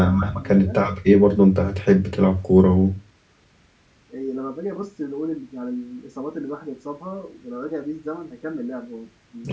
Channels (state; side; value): identical; both; correlation 1.00